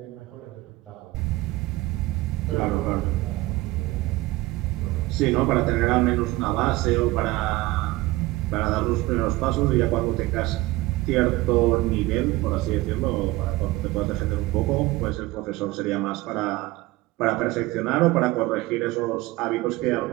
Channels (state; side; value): quieter; left; 19.3 dB